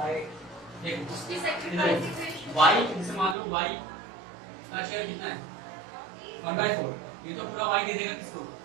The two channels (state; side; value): drops out; left; at 3.4 s